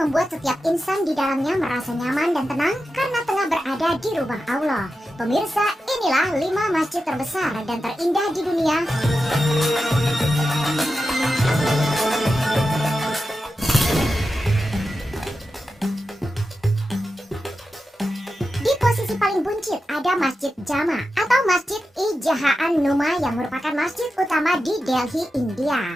membuat setiap insan di dalamnya merasa nyaman dan tenang karena tengah berada di rumah Allah. Pemirsa, inilah 5 masjid terbesar dan terindah di dunia. Di posisi paling buncit ada Masjid Jama atau Masjid Ijahaan Numa yang merupakan masjid utama di Delhi,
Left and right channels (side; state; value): both; normal; correlation 0.91